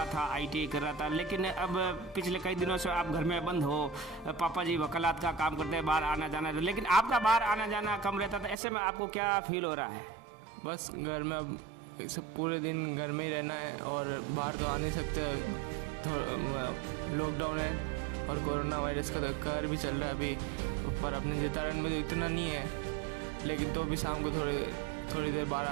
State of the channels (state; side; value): drops out; left; at 8.6 s